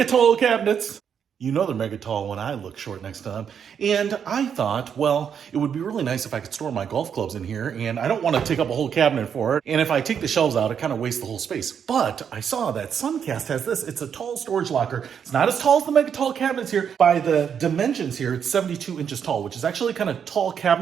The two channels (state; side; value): quieter; left; 7.7 dB